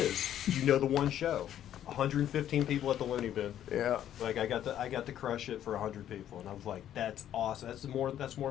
You know the one show. 115 people at the Looney Bin. Yeah. Like I got to crush it for 100 people, and I was like, "That's awesome. That's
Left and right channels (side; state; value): right; quieter; 11.0 dB